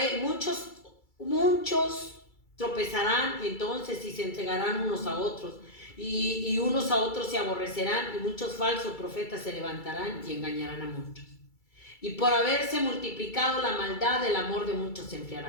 muchos tropezarán entonces y se entregarán unos a otros, y unos a otros se aborrecerán, y muchos falsos profetas se levantarán y engañarán a muchos. Y por haberse multiplicado la maldad, el amor de muchos se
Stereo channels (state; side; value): late; right; 2.3 ms